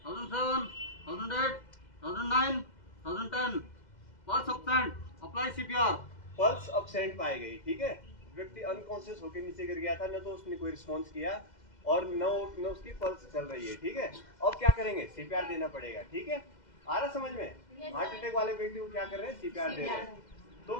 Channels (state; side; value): late; right; 2.0 ms